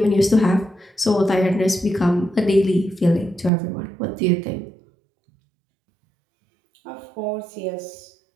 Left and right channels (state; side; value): drops out; left; at 3.5 s